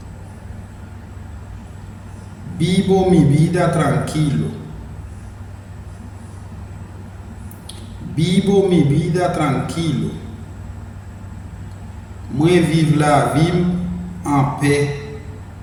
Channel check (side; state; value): both; identical; correlation 1.00